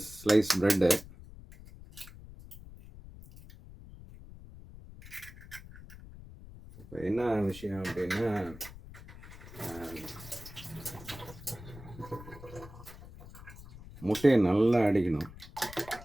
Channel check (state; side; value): noise; left; rumble, 17 dB below the sound